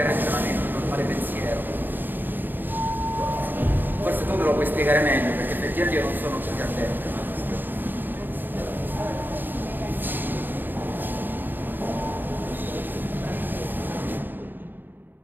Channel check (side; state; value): left; late; 0.092 ms